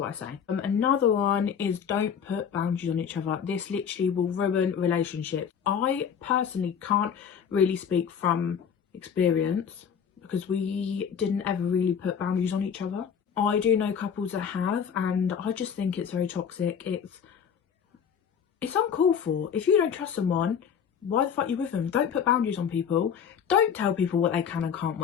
I say. Another one is don't put boundaries on each other. This literally will ruin relationships. I personally can't really speak from experience because we didn't ever really put boundaries on each other. I do know couples that have, and I just think it's very toxic. It's uncalled for. If you don't trust someone, why the fuck are you with them? Don't put boundaries on people. Don't tell people what they can and can't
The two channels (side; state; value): right; quieter; 7.5 dB